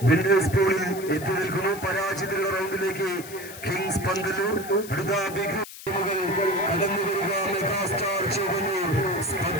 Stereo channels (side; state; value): left; noise; hiss, 14 dB below the sound